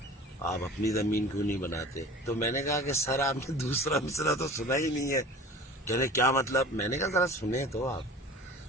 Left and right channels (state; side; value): normal; both; correlation 0.40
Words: آپ اپنی زمین کیوں نہیں بناتے؟ تو میں نے کہا کہ سر آپ نے دوسرا مصرع تو سنا ہی نہیں ہے۔ کہنے کیا مطلب؟ میں نے کہا ذرا سنیں تو آپ۔